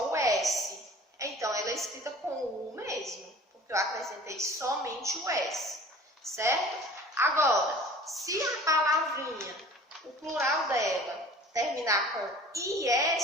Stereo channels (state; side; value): normal; both; correlation 0.45